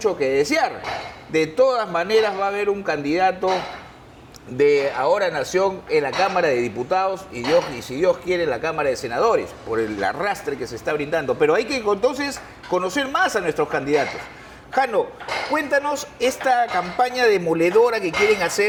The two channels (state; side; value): identical; both; correlation 1.00